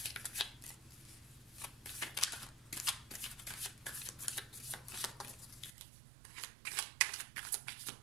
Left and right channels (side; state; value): left; drops out; at 5.7 s